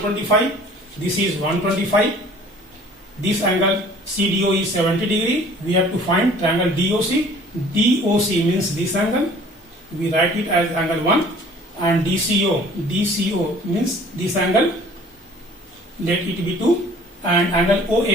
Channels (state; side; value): normal; both; correlation 0.51